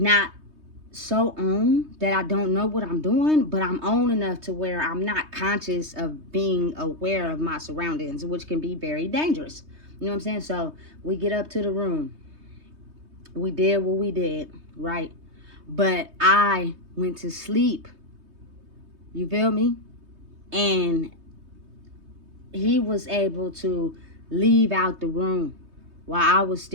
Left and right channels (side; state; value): left; late; 3.2 ms